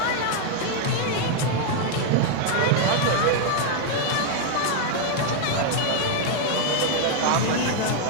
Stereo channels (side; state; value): both; different; correlation 0.00